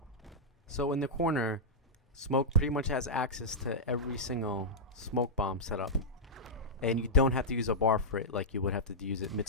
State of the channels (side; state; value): both; normal; correlation -0.08